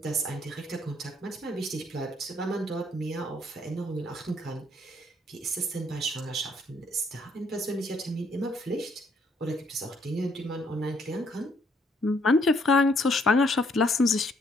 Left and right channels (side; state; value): both; normal; correlation 0.68